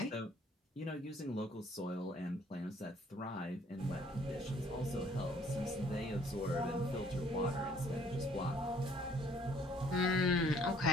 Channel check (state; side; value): normal; both; correlation 0.60